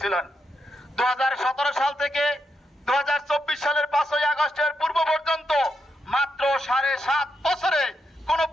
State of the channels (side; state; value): both; normal; correlation 0.82